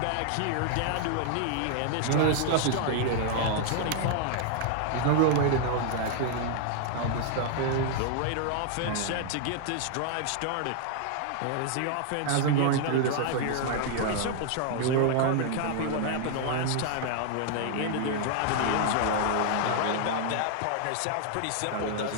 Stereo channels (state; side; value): different; both; correlation 0.00